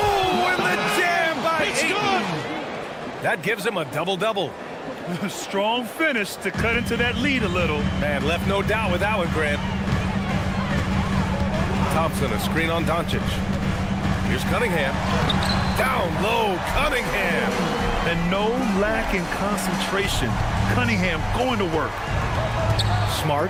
and the jam by Ayton. That gives him a double-double. Strong finish to cut into that lead a little. Man, left no doubt with that one, Grant. Thompson, a screen on Doncic. Here's Cunningham. Down low, Cunningham. And no lack in concentration. Cunningham going to work. Smart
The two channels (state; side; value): identical; both; correlation 1.00